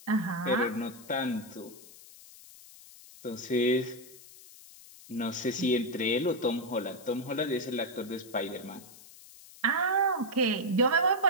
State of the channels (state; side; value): noise; left; hiss, 20 dB below the sound